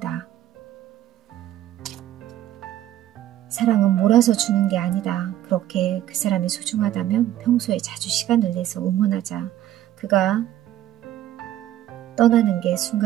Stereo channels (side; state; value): left; quieter; 12.7 dB